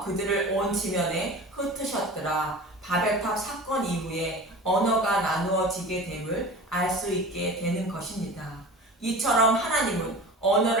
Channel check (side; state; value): both; normal; correlation 0.36